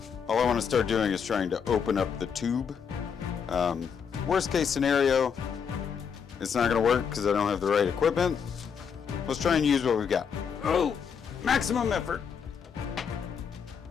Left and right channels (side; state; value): right; quieter; 6.8 dB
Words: all I want to start doing is trying to open up the tube. Worst case scenario, it's not going to work because I don't have the right equipment. Let's try and use what we've got. Oh, maximum effort.